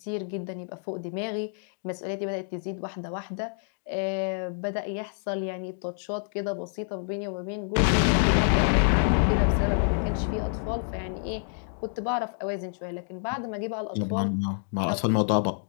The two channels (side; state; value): right; silent; digital silence